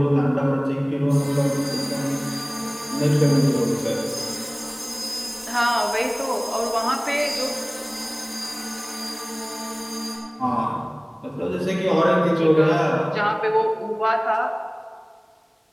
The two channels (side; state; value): both; identical; correlation 1.00